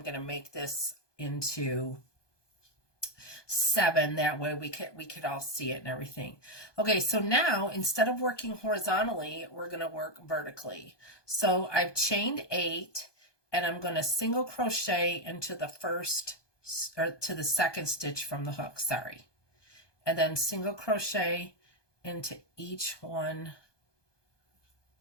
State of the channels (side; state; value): right; late; 1.2 ms